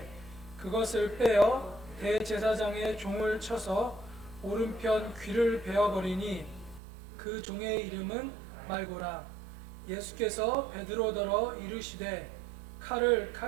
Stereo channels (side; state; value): left; drops out; at 6.8 s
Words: 그것을 빼어 대제사장의 종을 쳐서 오른편 귀를 베어버리니 그 종의 이름은 말고라. 예수께서 베드로더러 이르시되 칼을